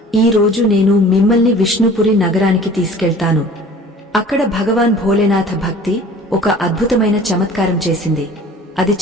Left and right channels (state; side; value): normal; both; correlation 0.46